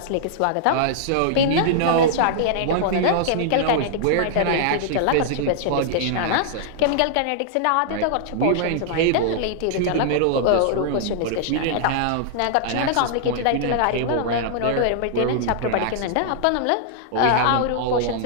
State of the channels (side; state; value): both; different; correlation -0.01